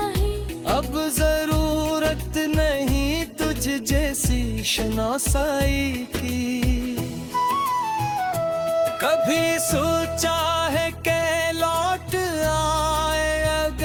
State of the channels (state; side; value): identical; both; correlation 1.00